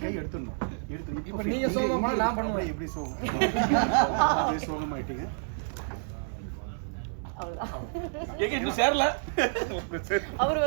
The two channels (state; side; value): silent; left; 58 dB below the other